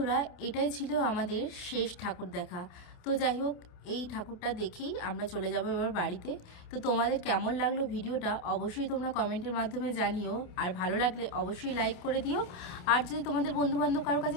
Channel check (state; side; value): late; right; 28 ms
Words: এটাই ছিল আমাদের শেষ ঠাকুর দেখা। তো যাই হোক, এই ঠাকুরটা দেখেই আমরা চলে যাব এবার বাড়িতে। তো তোমাদের কেমন লাগলো ভিডিওটা অবশ্যই তোমরা কমেন্টের মাধ্যমে জানিও। আর ভালো লাগলে অবশ্যই লাইক করে দিও। আর যদি তোমাদের বন্ধুবান্ধব কারো কাছে